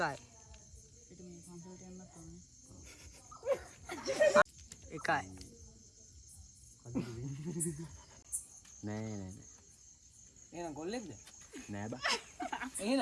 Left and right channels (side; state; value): both; identical; correlation 1.00